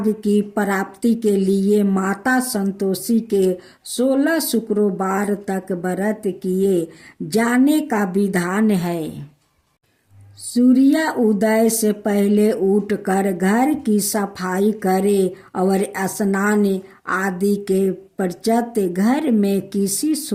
की प्राप्ति के लिए माता संतोषी के 16 शुक्रवार तक व्रत किए जाने का विधान है। सूर्य उदय से पहले उठकर घर की सफाई करें और स्नान आदि के पश्चात घर में किसी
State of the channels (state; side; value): identical; both; correlation 1.00